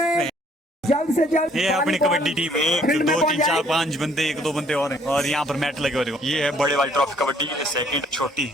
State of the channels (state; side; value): normal; both; correlation 0.62